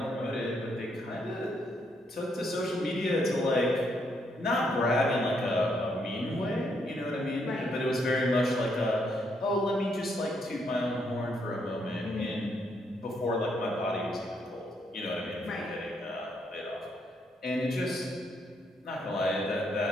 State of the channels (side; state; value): both; normal; correlation 0.74